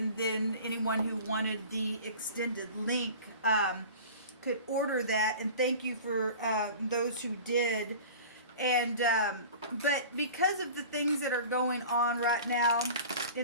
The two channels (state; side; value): inverted; both; correlation -0.39